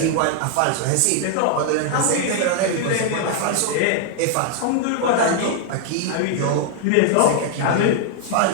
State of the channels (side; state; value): both; different; correlation 0.00